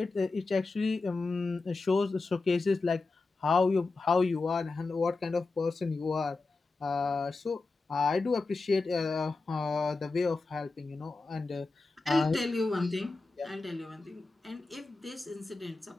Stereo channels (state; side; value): quieter; right; 3.7 dB